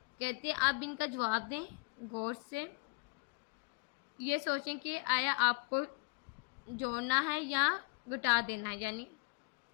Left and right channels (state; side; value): quieter; right; 32.0 dB